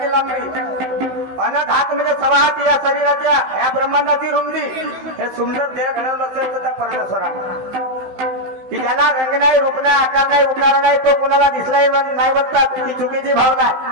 लांबी, अनंत हात म्हणजे 6 हात या शरीराच्या या ब्रह्मांडाची रुंदी. हे सुंदर देह घडवलं असेल तर त्या परमेश्वरा की ज्याला रंग नाही, रूप नाही, आकार नाही, उकार नाही, तो कुणाला दिसलाही नाही म्हणतात ती चुकीची भावना आहे.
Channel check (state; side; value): late; left; 15 ms